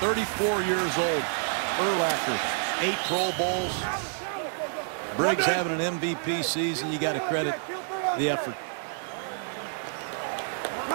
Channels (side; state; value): left; silent; digital silence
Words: years old. Urlacher, 8 Pro Bowls. Briggs having an MVP season. You got to credit the effort.